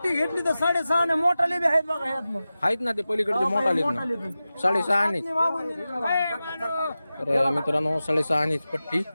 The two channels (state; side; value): inverted; both; correlation -0.95